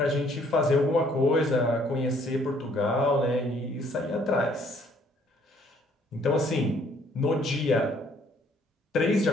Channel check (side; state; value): both; normal; correlation 0.63